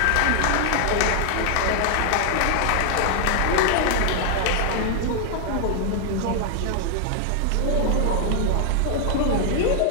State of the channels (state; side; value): different; both; correlation 0.00